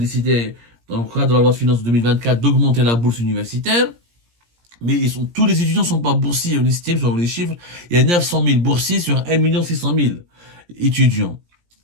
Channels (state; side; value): late; left; 17 ms